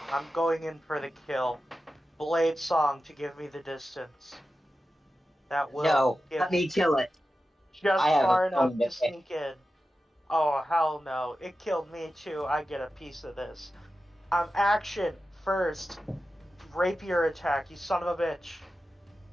I'm going in for the kill. Blade Song to give me the distance. That will No, give let me kill it. just I have far a enough phone to to pick. sneak in. Oh, hell no. It killed me too. I get a piece of this. Action first. Rapier attack, you son of a bitch.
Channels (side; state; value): both; normal; correlation 0.92